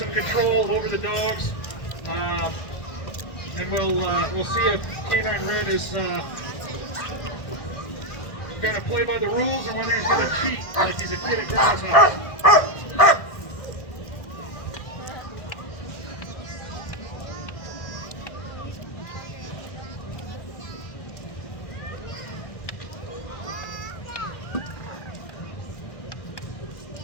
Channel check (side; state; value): right; late; 1.6 ms